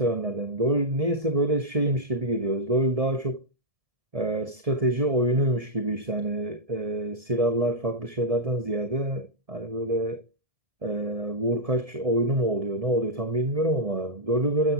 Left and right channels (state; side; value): late; left; 1.7 ms